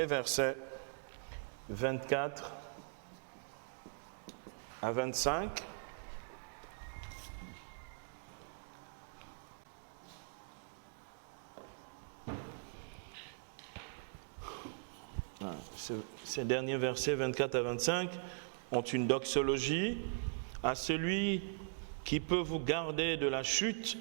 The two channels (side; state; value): left; silent; digital silence